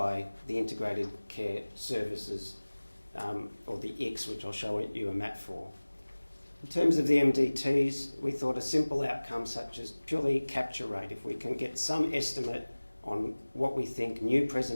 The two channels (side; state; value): both; inverted; correlation -1.00